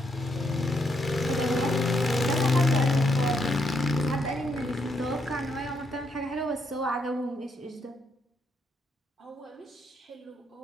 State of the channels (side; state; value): both; normal; correlation 0.77